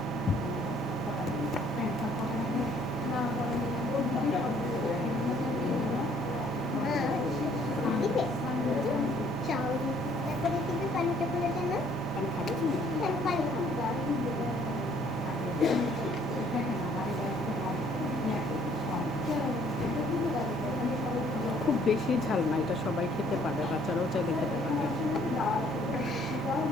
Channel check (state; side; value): normal; both; correlation 0.62